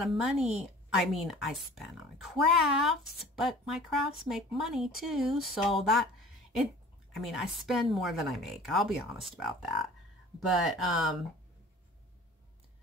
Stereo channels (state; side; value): normal; both; correlation 0.46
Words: of money. I mean, I spend on crafts, but my crafts make money too. So I mean, I spend more than I make. I'll be honest about that. But, I